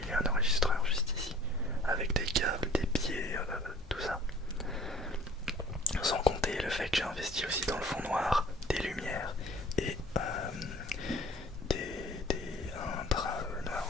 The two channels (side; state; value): both; normal; correlation 0.50